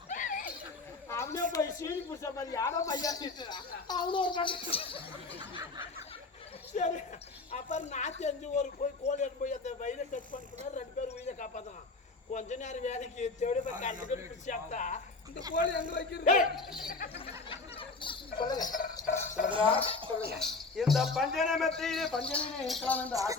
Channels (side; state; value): right; quieter; 3.7 dB